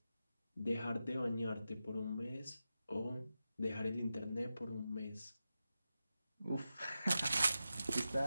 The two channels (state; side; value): inverted; both; correlation -0.91